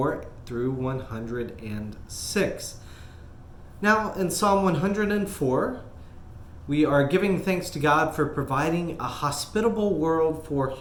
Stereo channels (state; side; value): identical; both; correlation 1.00